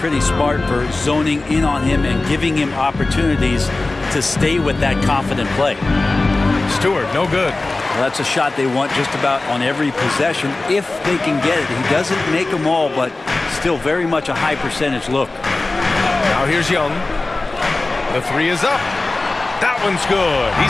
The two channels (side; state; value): right; quieter; 3.2 dB